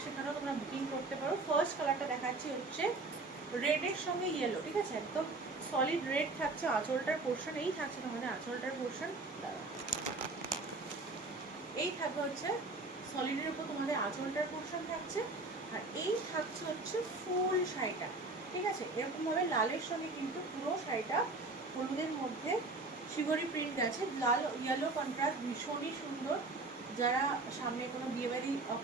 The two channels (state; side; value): quieter; left; 3.3 dB